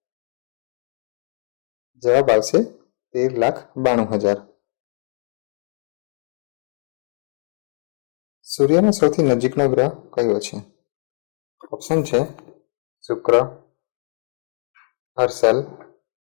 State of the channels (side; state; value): right; silent; 63 dB below the other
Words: જવાબ આવશે 13,92,000. સૂર્યનો સૌથી નજીકનો ગ્રહ કયો છે? ઓપ્શન છે શુક્ર, હર્ષલ,